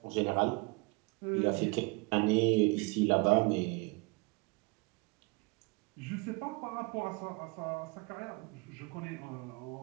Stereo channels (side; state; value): left; quieter; 27.2 dB